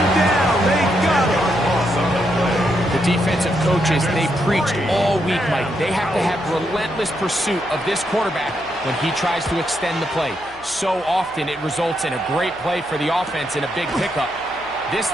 down. They got him. The defensive coaches, they preached all week, Mike. They have to have relentless pursuit of this quarterback when he tries to extend the play. So often it results in a great play for the offense and a big pickup. This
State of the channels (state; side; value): noise; right; hum, 25 dB below the sound